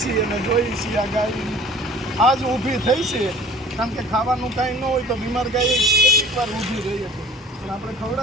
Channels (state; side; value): normal; both; correlation 0.44